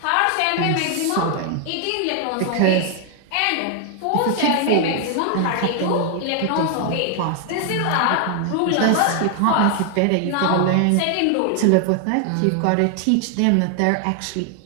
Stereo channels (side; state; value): both; different; correlation 0.00